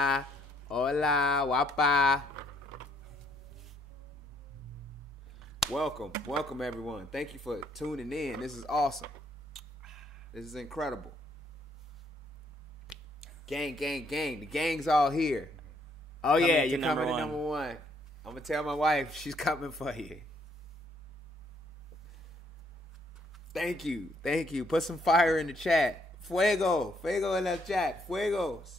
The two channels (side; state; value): both; normal; correlation 0.69